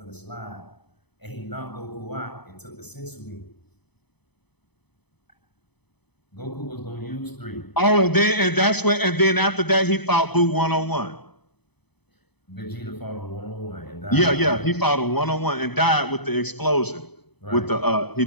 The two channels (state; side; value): late; right; 0.99 ms